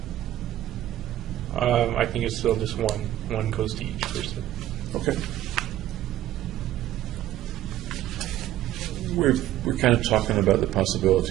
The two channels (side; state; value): left; quieter; 13.4 dB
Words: I think it's still just one. One goes to each person. Okay. We're kind of talking about the